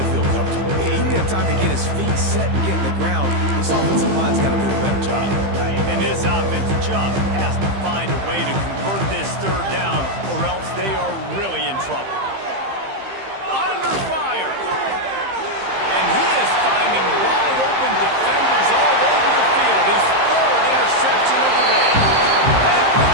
feel comfortable. He didn't have time to get his feet set and get in the ground. This offensive line's got to do a better job. And this offense just has to find a way to convert this third down, or else they are really in trouble. Under fire. And he is finding wide open defenders all over the field. His third interception of the day. And with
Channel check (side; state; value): left; late; 15 ms